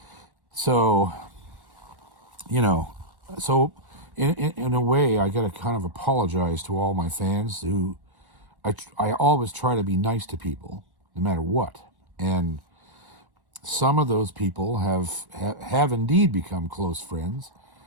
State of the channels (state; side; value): late; left; 1.1 ms